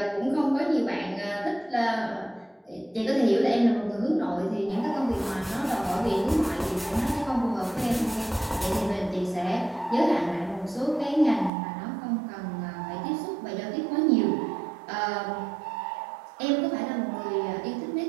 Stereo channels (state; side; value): drops out; left; at 11.5 s